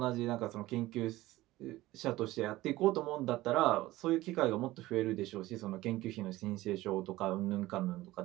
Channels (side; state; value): left; quieter; 17.4 dB